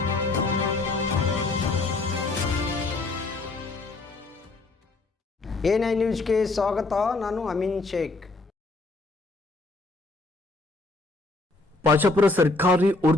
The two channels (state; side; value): quieter; right; 3.3 dB